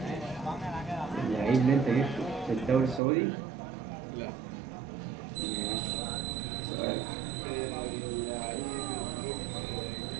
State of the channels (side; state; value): left; drops out; at 3.0 s